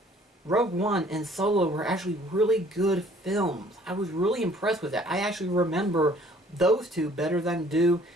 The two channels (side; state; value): both; normal; correlation 0.57